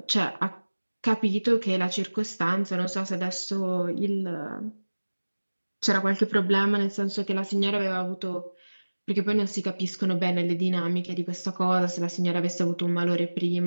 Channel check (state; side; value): inverted; both; correlation -1.00